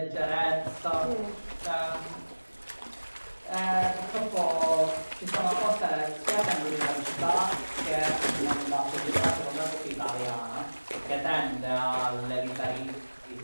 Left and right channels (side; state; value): both; inverted; correlation -1.00